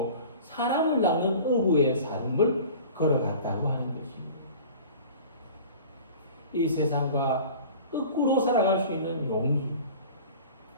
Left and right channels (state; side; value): inverted; both; correlation -0.42